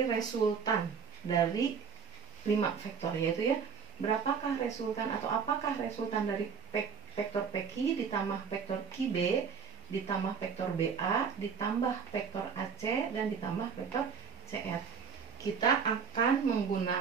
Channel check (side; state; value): left; quieter; 6.3 dB